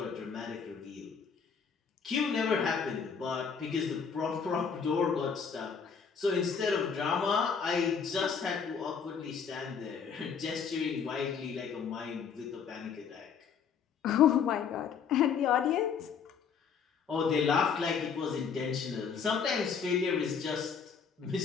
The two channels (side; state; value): right; quieter; 6.5 dB